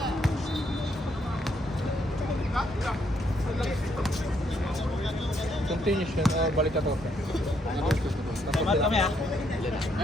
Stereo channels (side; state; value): both; normal; correlation 0.73